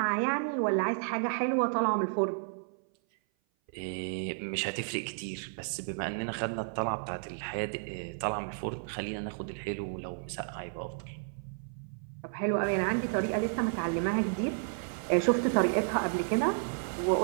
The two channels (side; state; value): left; silent; 56 dB below the other